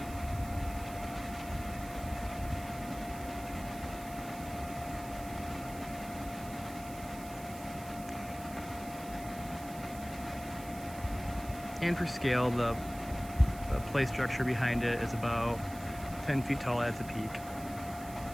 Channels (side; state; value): right; noise; hiss, 16 dB below the sound